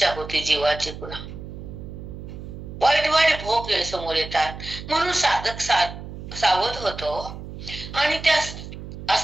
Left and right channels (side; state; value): right; noise; hum, 11 dB below the sound